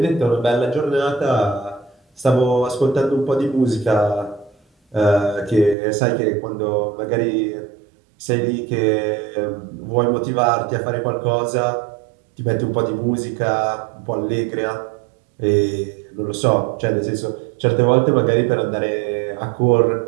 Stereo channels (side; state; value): left; drops out; at 5.8 s